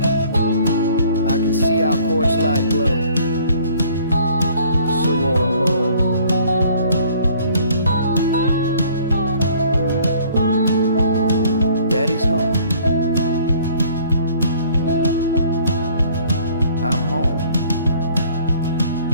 I can see our porch light glow, so warm, oh. Daddy's home. I'm home.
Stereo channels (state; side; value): inverted; both; correlation -0.57